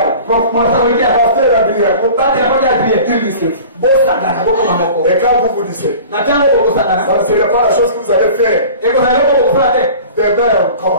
Pasteur Adrien. Il ne se fout. Et quand vous vous disiez, ça ne serait pas la chose que vous allez faire. Demain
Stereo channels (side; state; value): both; inverted; correlation -0.41